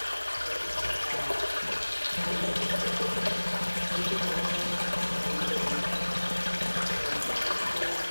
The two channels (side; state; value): both; inverted; correlation -1.00